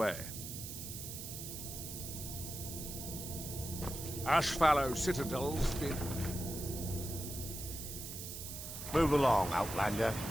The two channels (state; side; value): noise; right; hiss, 8 dB below the sound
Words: Ashfallow Citadel's been... Move along, Outlander.